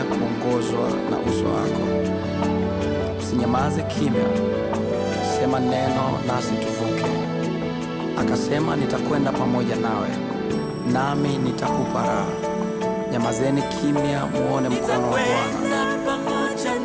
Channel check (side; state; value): both; identical; correlation 1.00